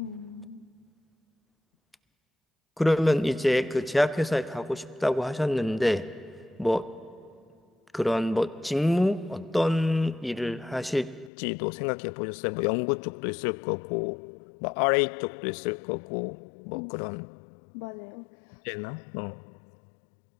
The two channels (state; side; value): drops out; right; at 11.3 s